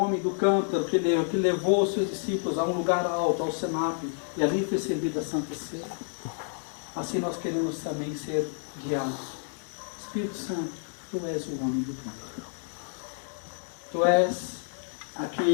do cântaro que levou os seus discípulos a um lugar alto, ao cenáculo, e ali foi servida a Santa Ceia. assim nós queremos também ser guiados. Espírito Santo, Tu és o homem do Pai. Tu és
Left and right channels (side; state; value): right; silent; digital silence